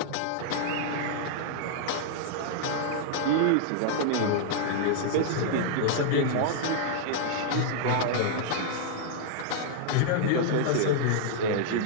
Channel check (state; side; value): different; both; correlation -0.01